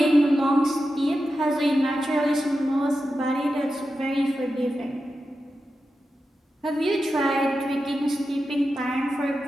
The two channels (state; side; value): normal; both; correlation 0.90